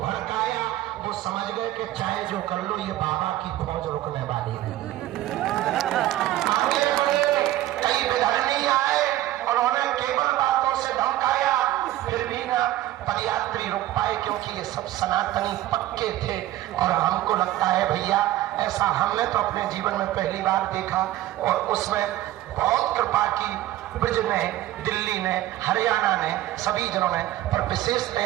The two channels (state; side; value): quieter; left; 14.8 dB